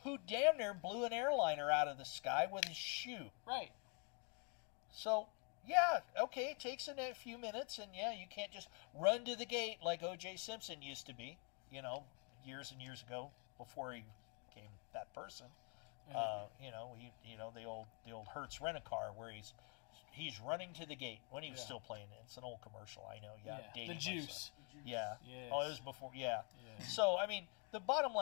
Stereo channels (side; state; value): right; quieter; 36.5 dB